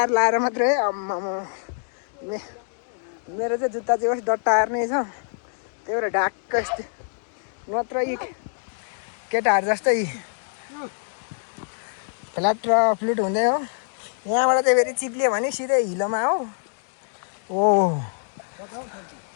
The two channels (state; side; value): silent; right; digital silence